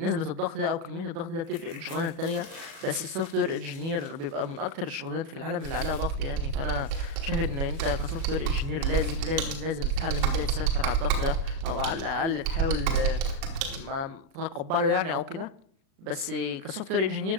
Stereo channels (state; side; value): late; left; 36 ms